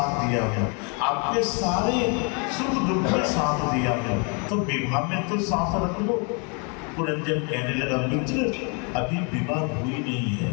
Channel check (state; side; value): quieter; right; 35.1 dB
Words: दिया हूँ, आपके सारे सुख दुख में साथ दिया हूँ, तो विवाह में तो साथ रख लो। पुरंजन कहने लगा, मित्र अभी विवाह हुई नहीं